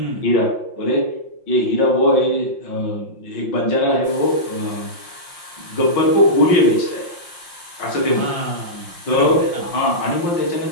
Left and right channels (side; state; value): right; late; 5.7 ms